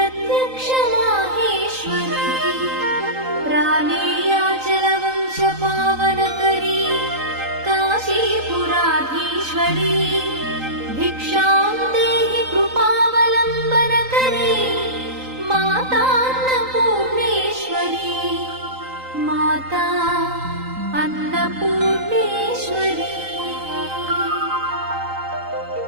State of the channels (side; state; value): left; late; 3.9 ms